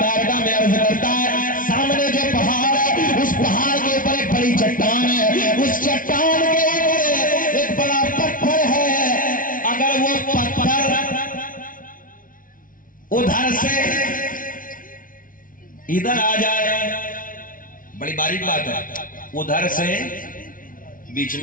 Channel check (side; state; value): right; late; 0.39 ms